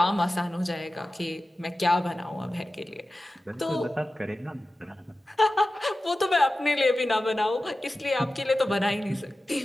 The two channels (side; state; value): both; normal; correlation 0.95